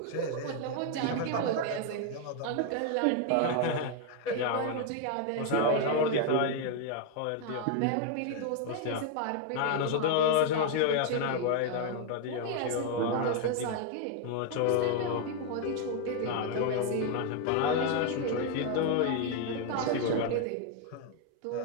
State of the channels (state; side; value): different; both; correlation 0.01